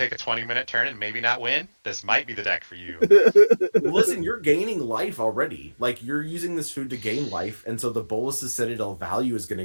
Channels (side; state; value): both; inverted; correlation -1.00